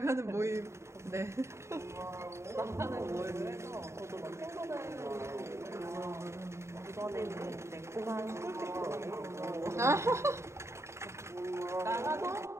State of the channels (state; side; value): late; left; 0.13 ms